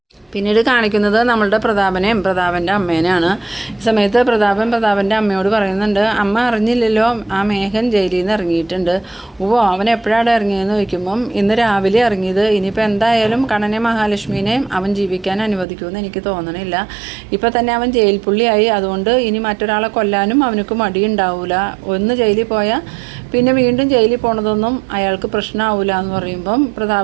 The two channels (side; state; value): left; drops out; at 15.7 s